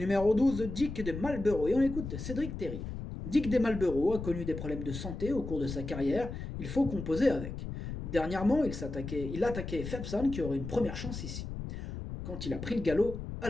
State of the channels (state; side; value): noise; left; rumble, 7 dB below the sound